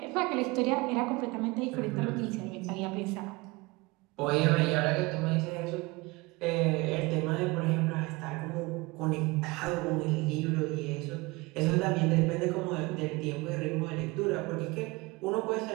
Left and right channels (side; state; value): left; quieter; 23.8 dB